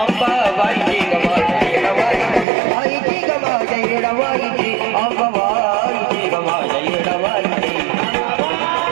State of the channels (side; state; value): left; drops out; at 2.5 s